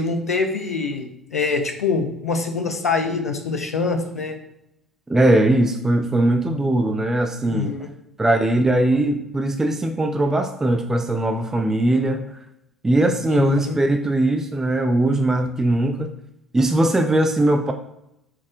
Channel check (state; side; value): normal; both; correlation 0.75